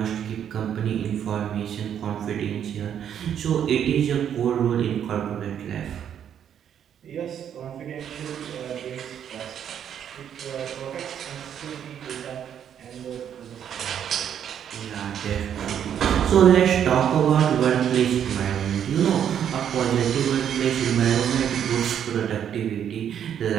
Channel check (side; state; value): left; quieter; 9.1 dB